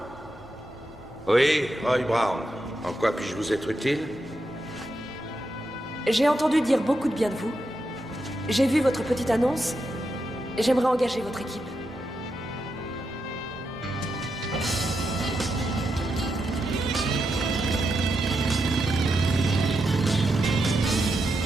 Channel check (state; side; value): normal; both; correlation 0.85